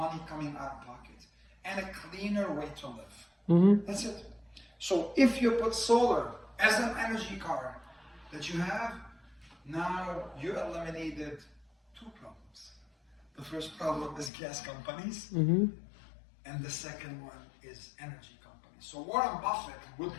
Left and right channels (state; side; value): drops out; right; at 14.3 s